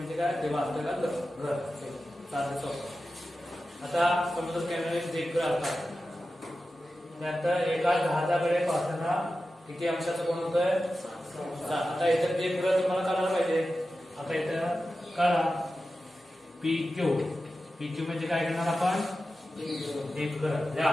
काय देवा आपल्याला घर साधं सोपं. आता समुद्र किनारी दीपगृह असतात त्यानंतर एका जहाजाकडे पाहताना किती अंशाचं कोण होतंय. आता इथं दीपगृह तुम्हाला कळायला पाहिजे. आता इथं कळा PQ म्हणजे काय करणार आपण दीपगृह लिहा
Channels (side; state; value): both; normal; correlation 0.93